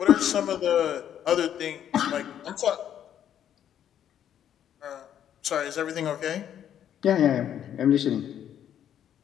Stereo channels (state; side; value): quieter; right; 10.0 dB